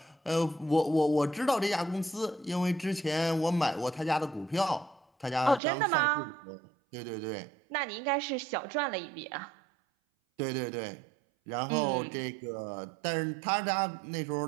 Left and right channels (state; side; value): drops out; left; at 5.6 s